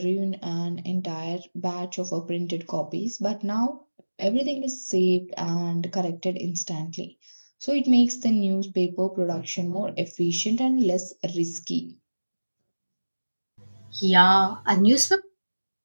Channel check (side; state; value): both; inverted; correlation -1.00